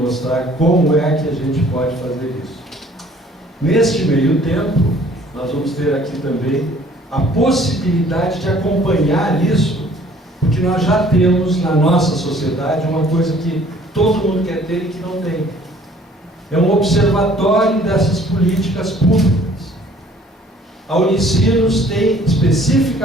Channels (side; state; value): both; normal; correlation 0.56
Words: como é que a gente pode fazer isso. Neste meio tempo, nós vamos ter aqui também a possibilidade de acompanhar isso, porque nós já temos na nossa sociedade uma coisa que todo mundo quer ter e que não tem. É um observatório dessas políticas públicas. A Unicinos tem